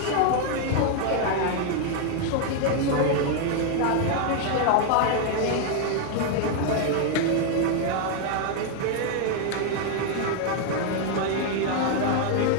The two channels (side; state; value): both; different; correlation 0.00